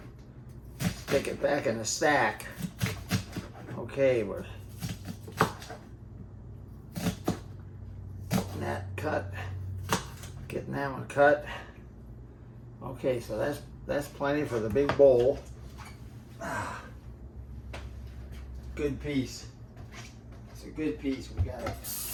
stick it back in the stack. Okay, we're getting that one cut. Okay, so that's plenty for the big bowl. Good piece. It's a good piece. We got it.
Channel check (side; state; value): both; identical; correlation 1.00